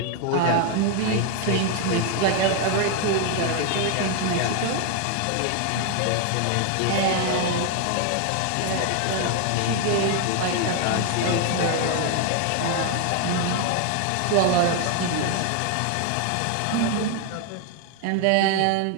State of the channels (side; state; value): both; different; correlation 0.00